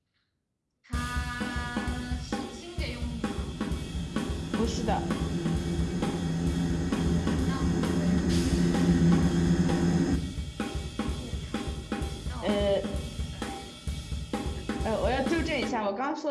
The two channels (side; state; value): both; identical; correlation 1.00